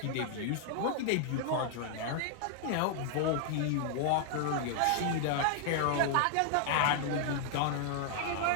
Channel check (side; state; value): both; different; correlation 0.00